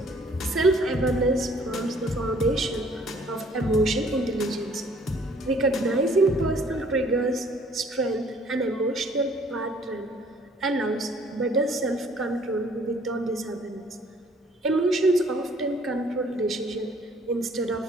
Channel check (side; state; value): both; normal; correlation 0.58